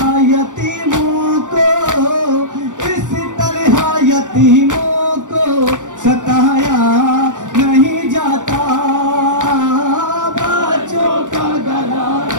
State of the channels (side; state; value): left; late; 0.87 ms